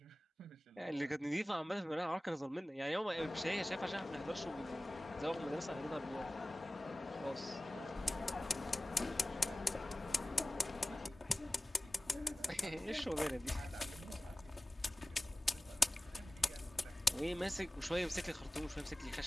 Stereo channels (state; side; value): normal; both; correlation 0.97